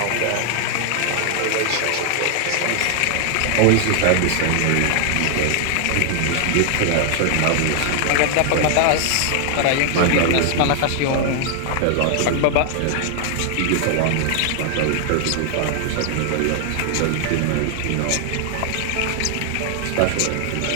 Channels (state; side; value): different; both; correlation 0.00